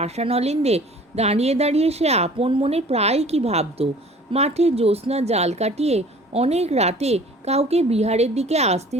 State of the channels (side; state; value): both; normal; correlation 0.48